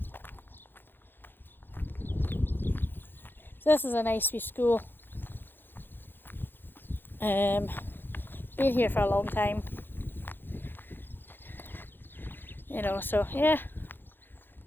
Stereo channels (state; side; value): late; right; 0.098 ms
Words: So this is a nice wee school. Been here for a long time. You know, so yeah.